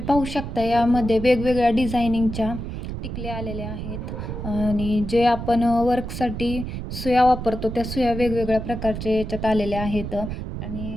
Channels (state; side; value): noise; right; rumble, 6 dB below the sound